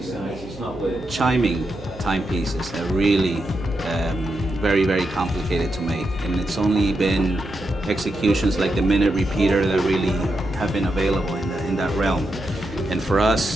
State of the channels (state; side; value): noise; right; hum, 18 dB below the sound